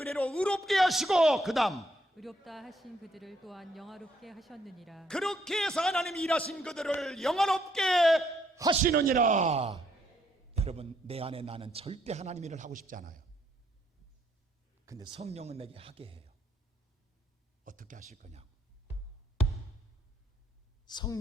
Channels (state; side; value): normal; both; correlation 0.71